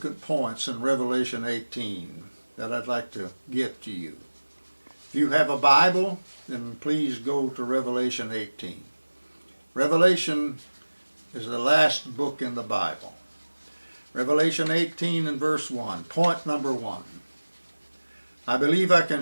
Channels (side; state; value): both; inverted; correlation -1.00